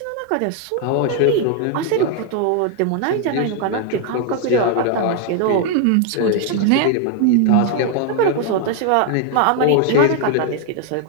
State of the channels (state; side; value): different; both; correlation 0.00